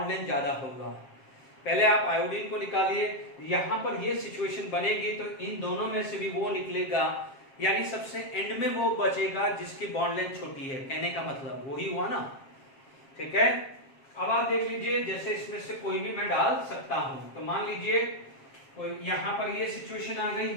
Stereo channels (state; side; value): late; right; 7.4 ms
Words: लेंथ ज्यादा होगा। पहले आप आयोडीन को निकालिए, यहां पर ये सिचुएशन बनेगी, तो इन दोनों में से भी वो निकलेगा, यानी सबसे एंड में वो बचेगा जिसकी बॉन्ड लेंथ छोटी है। कहने का मतलब वही हुआ ना? ठीक है, अब आप देख लीजिए, जैसे इसमें से कोई भी मैं डाल सकता हूं। तो मान लीजिए कोई यहां पर ये सिचुएशन आ गई